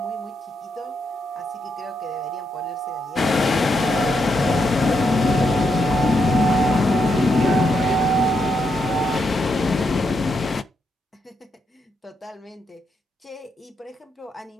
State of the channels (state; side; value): normal; both; correlation 0.81